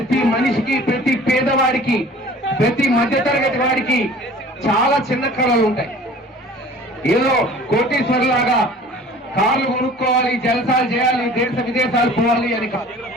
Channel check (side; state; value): both; normal; correlation 0.47